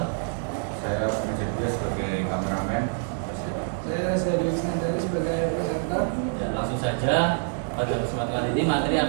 Saya pengecek juga sebagai kameramen. Saya Reza Dewi sebagai presenter. Ya, langsung saja pada kesempatan kali ini materi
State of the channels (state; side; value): silent; left; digital silence